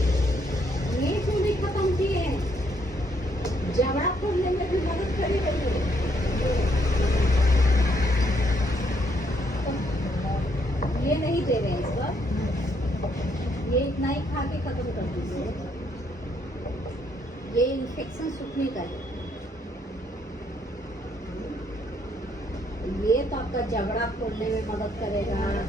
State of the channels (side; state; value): both; normal; correlation 0.71